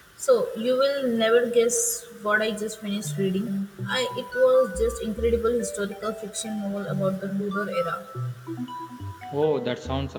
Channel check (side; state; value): both; identical; correlation 1.00